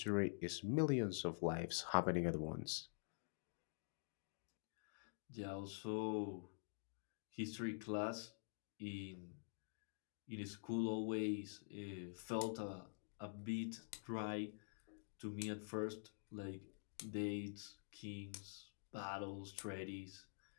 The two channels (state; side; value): silent; right; digital silence